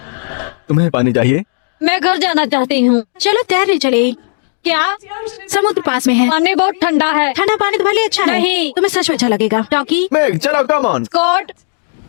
तुम्हें पानी चाहिए? मैं घर जाना चाहती हूँ। चलो तैरने चले। क्या? समुद्र पास में है। पानी बहुत ठंडा है। ठंडा पानी तुम्हारे लिए अच्छा है। नहीं। तुम्हें सच में अच्छा लगेगा। टॉकी, मेघ, चलो, कम ऑन। कोर्ट?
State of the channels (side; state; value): right; silent; digital silence